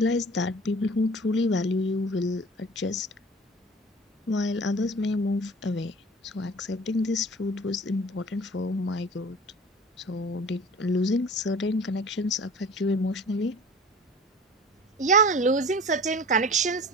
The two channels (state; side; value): normal; both; correlation 0.41